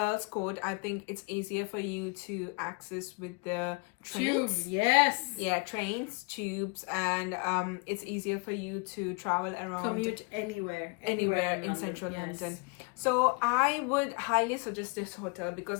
Court, I think it's easier for you to access with the Tube, trains. yes. Yeah, trains, tubes, and it's easier for you to travel around. Commute anywhere Anywhere in London, central yes. London. So I would highly suggest this hotel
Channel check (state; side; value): quieter; right; 31.0 dB